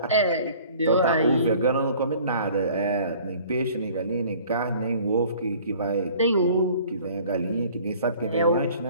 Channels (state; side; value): inverted; both; correlation -0.51